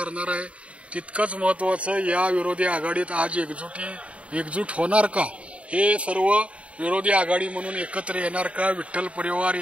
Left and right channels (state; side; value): late; left; 0.063 ms